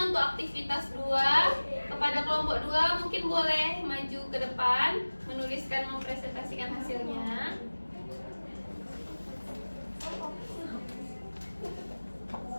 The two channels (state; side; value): inverted; both; correlation -1.00